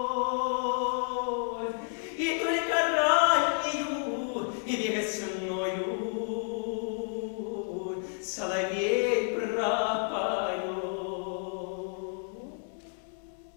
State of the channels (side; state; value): right; silent; 57 dB below the other